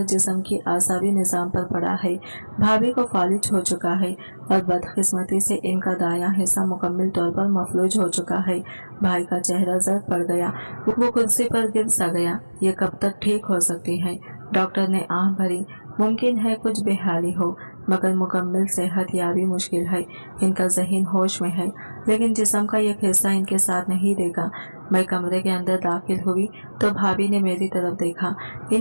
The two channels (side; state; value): both; inverted; correlation -1.00